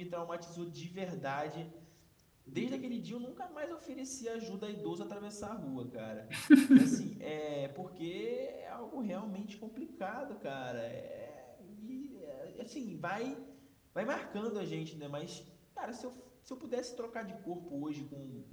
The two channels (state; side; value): identical; both; correlation 1.00